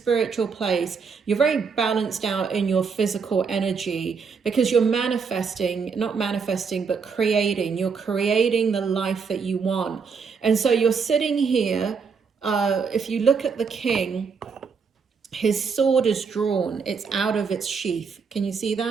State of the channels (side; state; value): left; quieter; 5.6 dB